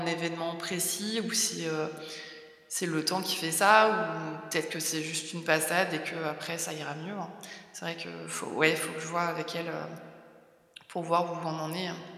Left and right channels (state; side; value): identical; both; correlation 1.00